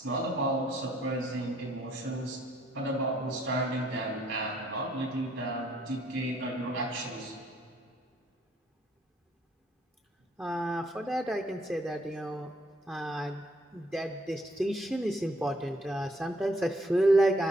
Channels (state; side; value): normal; both; correlation 0.66